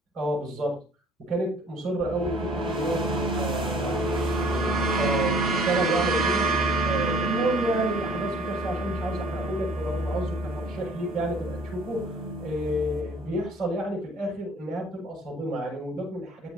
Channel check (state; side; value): normal; both; correlation 0.54